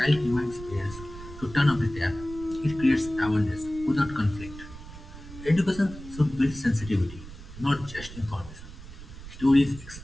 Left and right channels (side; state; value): right; noise; rumble, 14 dB below the sound